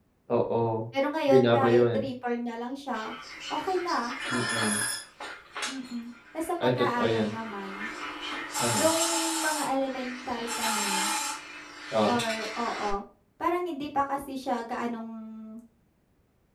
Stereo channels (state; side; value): identical; both; correlation 1.00